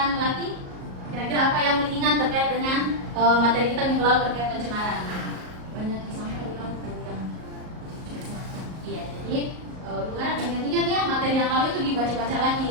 Melati. Kira-kira apa yang diingat terkait dengan materi kita minggu lalu terkait pencemaran? Banyak yang sampai di laut. Iya, jadi harap ingat-ingat ya materi yang lalu itu dibaca-baca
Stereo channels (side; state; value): left; late; 38 ms